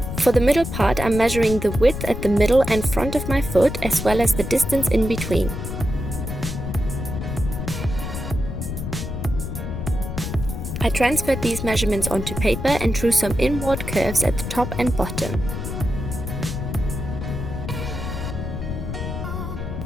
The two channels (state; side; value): noise; left; rumble, 5 dB below the sound